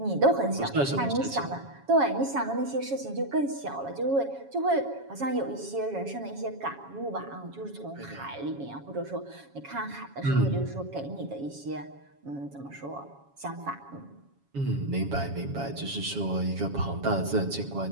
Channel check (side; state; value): left; late; 7.2 ms